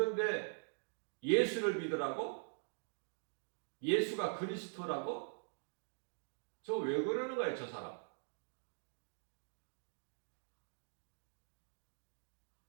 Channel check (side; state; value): left; silent; digital silence